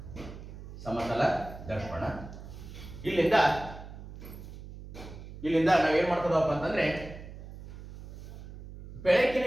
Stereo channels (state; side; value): noise; right; hum, 13 dB below the sound